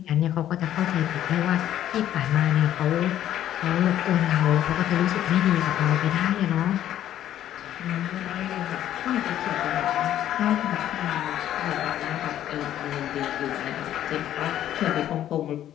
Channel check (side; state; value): right; quieter; 11.7 dB